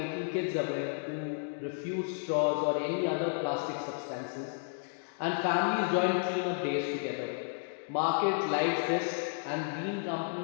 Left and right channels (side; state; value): right; silent; digital silence